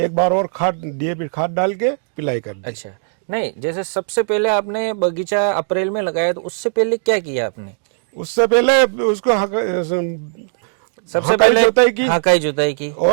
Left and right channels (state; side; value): silent; left; digital silence